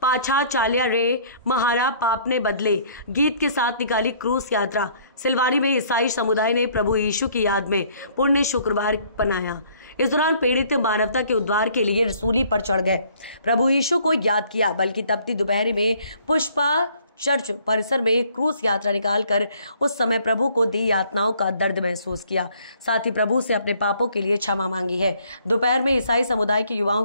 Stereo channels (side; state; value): both; inverted; correlation -0.60